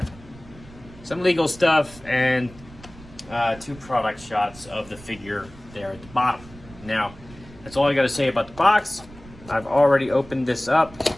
some legal stuff and two product shots of the figure there at the bottom. Now, that's all I got to say about the box. I've already opened this up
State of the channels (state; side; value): noise; right; rumble, 20 dB below the sound